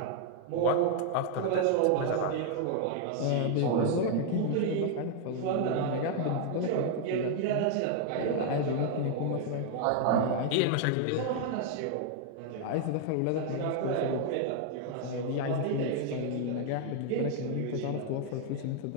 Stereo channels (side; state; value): both; different; correlation 0.00